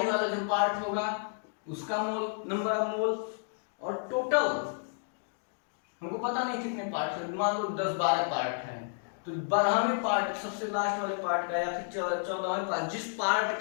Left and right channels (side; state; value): right; silent; digital silence